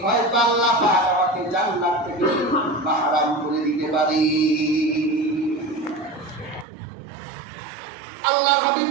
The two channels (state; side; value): drops out; left; at 6.7 s